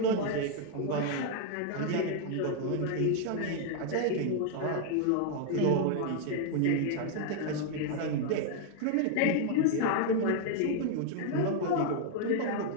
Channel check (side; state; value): both; different; correlation 0.00